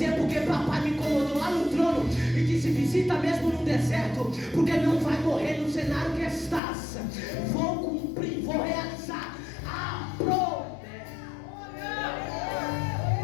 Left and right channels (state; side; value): drops out; right; at 6.6 s